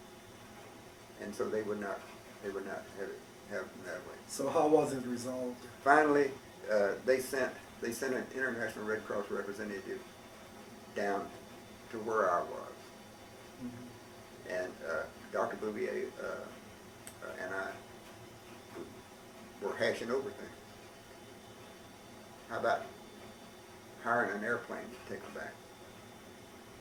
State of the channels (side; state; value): both; identical; correlation 1.00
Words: And so they would not have it that way. So how was it resolved? Finally, they sent an International Red Cross representative down to where I was. Mm-hmm. And Dr. Bouvier and I were hashing over things. How about hiring an airplane to take them back?